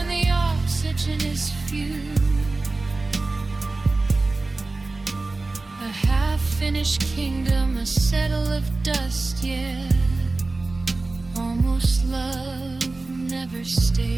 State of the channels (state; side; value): quieter; left; 3.3 dB